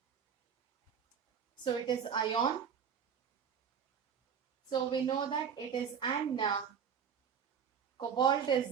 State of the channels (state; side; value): quieter; left; 7.4 dB